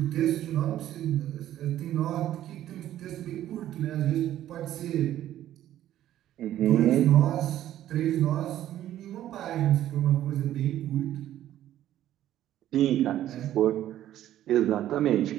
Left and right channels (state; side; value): quieter; left; 12.5 dB